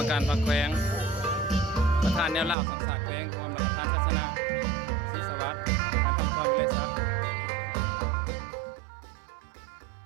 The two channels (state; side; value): drops out; left; at 2.6 s